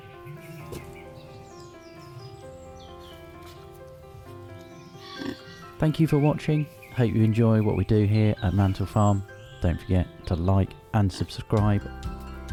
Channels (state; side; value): identical; both; correlation 1.00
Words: Thank you for watching. Hope you enjoy what we do here at Mantel Farm. Don't forget to like and subscribe